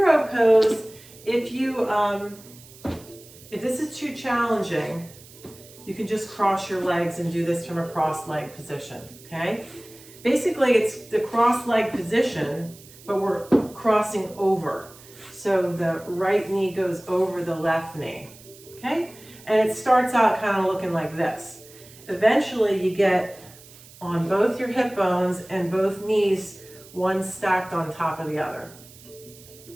pose, if this is too challenging, you can just cross your legs and do this from a cross-leg position, okay? Basically, it's the cross-leg position, but we're crossing over. So the right knee goes over the left knee, okay? And it starts out kind of looking like this. Eventually, you get on both your hip bones and both knees, one stacked on top of the other.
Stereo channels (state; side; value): noise; right; hiss, 21 dB below the sound